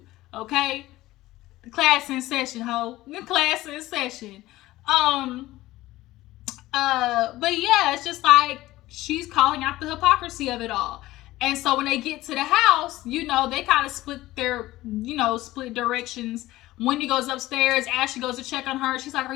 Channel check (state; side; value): quieter; right; 17.0 dB